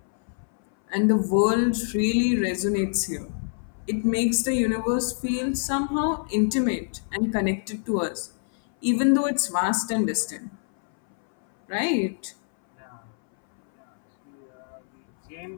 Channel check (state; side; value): silent; right; 61 dB below the other